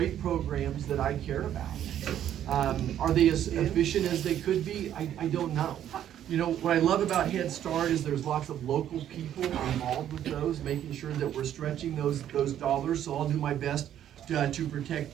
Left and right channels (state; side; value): quieter; left; 10.8 dB